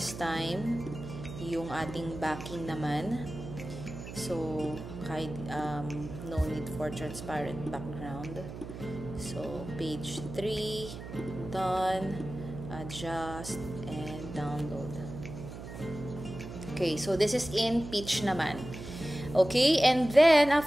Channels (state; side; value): noise; right; hum, 11 dB below the sound